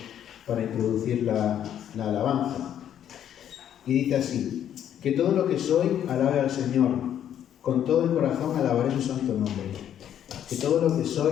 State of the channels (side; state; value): right; quieter; 10.1 dB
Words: para introducir la alabanza. Y dice así: que todo lo que soy alabe al Señor, con todo el corazón alabaré su santo nombre. Que todo lo que